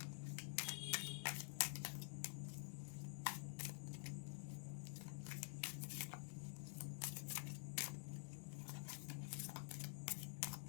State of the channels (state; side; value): silent; right; digital silence